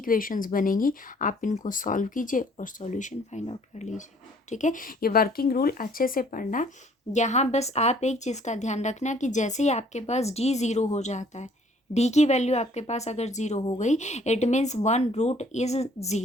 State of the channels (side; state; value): both; normal; correlation 0.59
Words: बनेंगी, आप इनको सॉल्व कीजिए और सॉल्यूशन फाइंड आउट कर लीजिए। ठीक है, ये वर्किंग रूल अच्छे से पढ़ना। यहाँ बस आप एक चीज़ का ध्यान रखना कि जैसे ही आपके पास d 0 हो जाता है, d की वैल्यू आपके पास अगर 0 हो गई इट मीन्स 1 रूट इज़